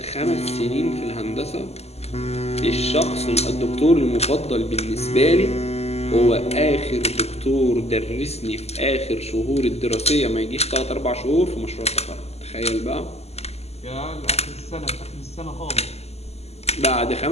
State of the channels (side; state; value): right; late; 0.30 ms